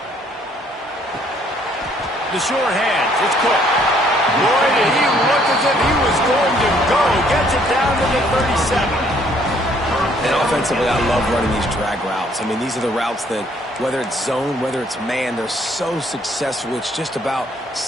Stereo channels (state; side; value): normal; both; correlation 0.64